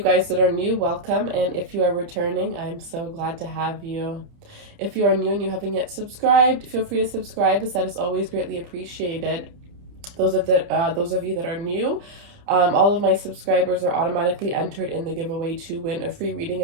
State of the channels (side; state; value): left; late; 30 ms